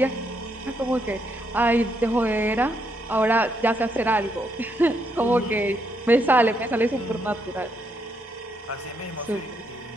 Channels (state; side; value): normal; both; correlation 0.77